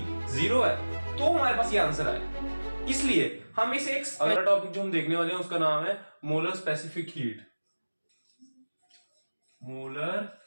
0 है, तो हमारे पास ये आंसर है। इसलिए हम इसे एक अगला टॉपिक जो हम देखने वाले हैं उसका नाम है molar specific heat. Molar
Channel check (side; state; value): both; inverted; correlation -1.00